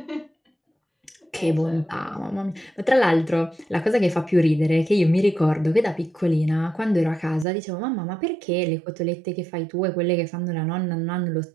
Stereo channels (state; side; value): drops out; left; at 7.5 s